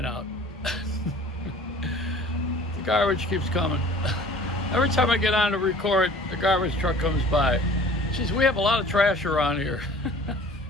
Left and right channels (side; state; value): both; normal; correlation 0.48